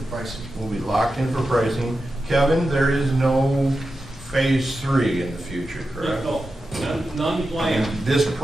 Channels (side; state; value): both; normal; correlation 0.90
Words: pricing. we'll be locked in for pricing. Kevin, there is no phase 3 in the future, correct? No, none And planned. this